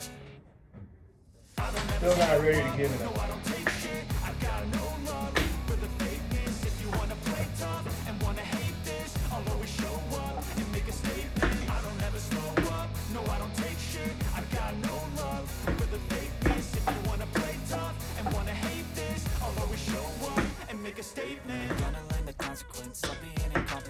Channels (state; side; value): identical; both; correlation 1.00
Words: Still not ready to give it up. I don't take shit. I got no love for the fakeness. If you wanna play tough and wanna hate this, I'll always show up and make a statement. I don't ever slow up. No, I don't take shit. I got no love for the fakeness. If you wanna play tough and wanna hate this, I'll always show up and make a statement. Gonna learn the consequence of being